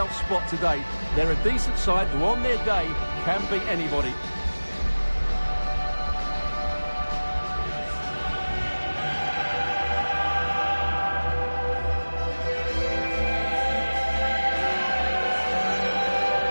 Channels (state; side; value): inverted; both; correlation -1.00